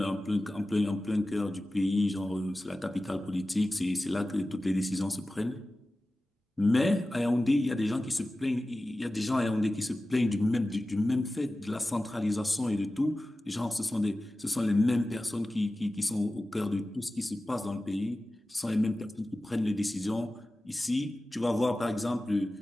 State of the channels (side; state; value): both; normal; correlation 0.95